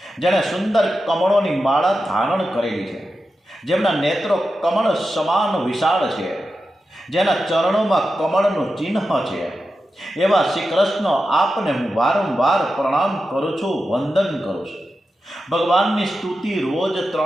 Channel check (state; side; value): normal; both; correlation 0.90